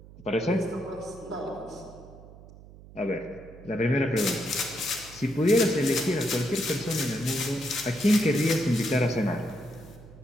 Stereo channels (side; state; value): right; noise; hum, 19 dB below the sound